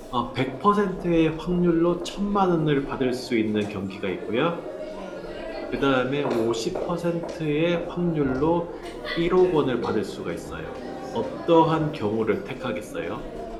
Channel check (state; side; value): identical; both; correlation 1.00